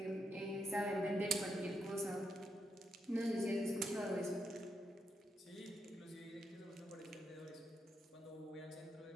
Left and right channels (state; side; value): normal; both; correlation 0.81